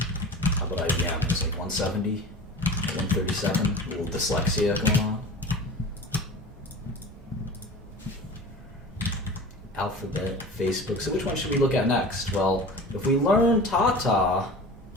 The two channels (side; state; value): both; normal; correlation 0.37